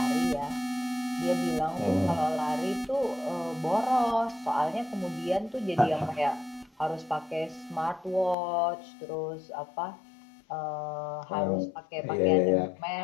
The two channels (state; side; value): drops out; right; at 8.3 s